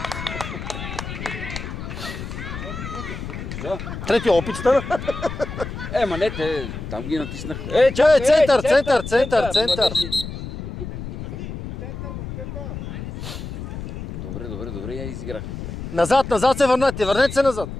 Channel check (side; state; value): left; noise; rumble, 8 dB below the sound